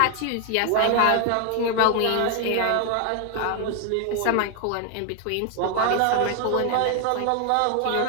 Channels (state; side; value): different; both; correlation 0.00